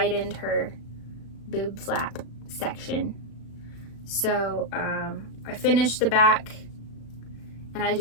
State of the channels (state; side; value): late; right; 36 ms